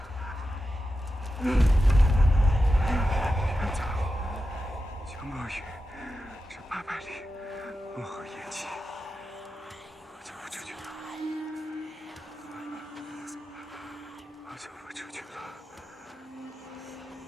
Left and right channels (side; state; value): both; normal; correlation 0.91